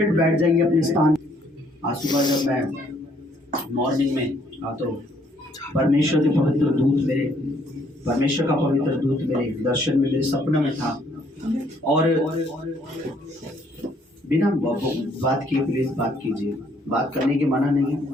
बैठ जाइए अपने स्थान। आज सुबह जब मैं मॉर्निंग में तो परमेश्वर के पवित्र दूत मेरे, परमेश्वर का पवित्र दूत मेरे दर्शन में, मेरे सपने में था और बिना बात किए प्लीज बात कीजिए, बात करने की मना नहीं है,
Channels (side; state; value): both; normal; correlation 0.66